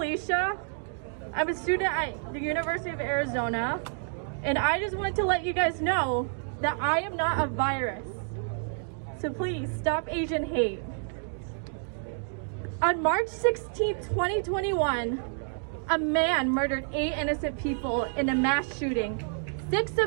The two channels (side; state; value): left; silent; 59 dB below the other